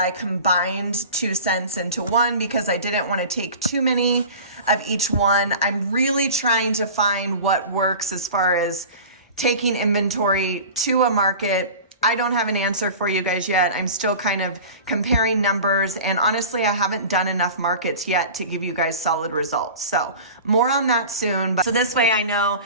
combined 2 scents into one because I didn't want to take too many of each one. I'm really trying to find what works as far as taking inventory to a market. I don't have an answer for you guys yet. I'm still kind of comparing numbers, and honestly, I haven't done enough markets yet to give you guys solid results. So more on that soon. So this way I know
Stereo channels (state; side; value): inverted; both; correlation -0.37